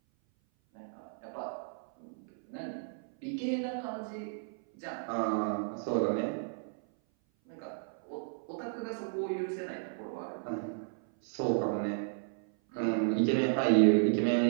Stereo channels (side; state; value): left; silent; 56 dB below the other